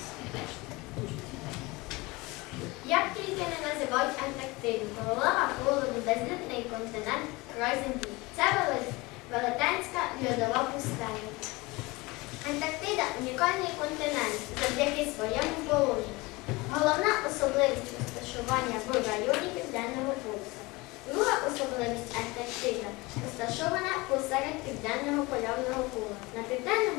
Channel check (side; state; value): right; quieter; 23.2 dB